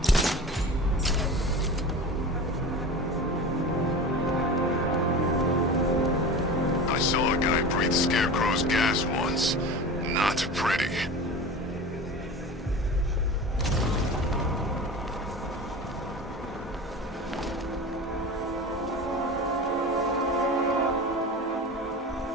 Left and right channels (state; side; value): normal; both; correlation 0.32